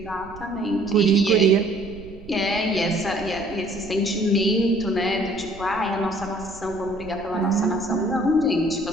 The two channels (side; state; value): right; noise; rumble, 18 dB below the sound